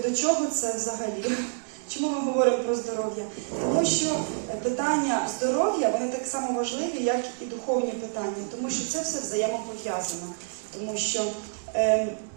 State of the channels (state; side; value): silent; left; digital silence